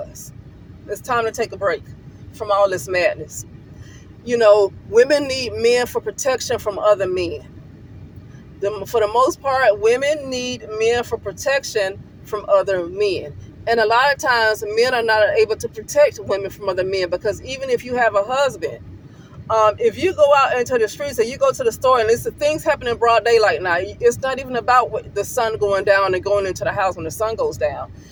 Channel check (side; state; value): both; identical; correlation 1.00